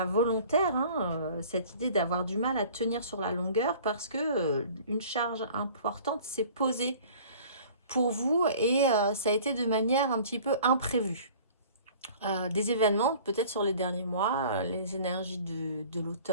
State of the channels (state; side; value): inverted; both; correlation -0.47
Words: volontaire, hein, cette idée d'avoir du mal à tenir sur la longueur, parce que une charge importante s'est posée pour vous et ça a été de manière un petit peu imprévue. Des événements, peut-être sur les derniers mois, les énergies de